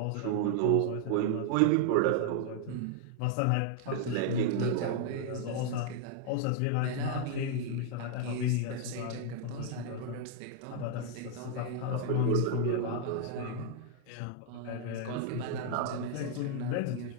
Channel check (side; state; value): both; different; correlation 0.00